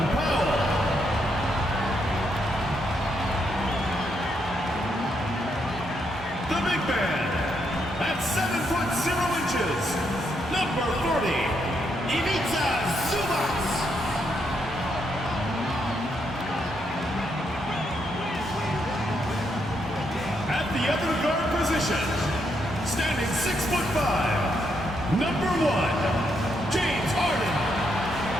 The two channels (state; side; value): normal; both; correlation 0.78